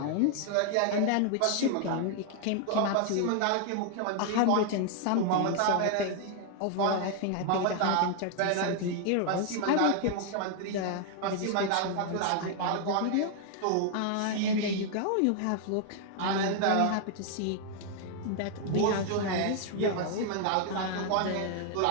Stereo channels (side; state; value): both; different; correlation 0.00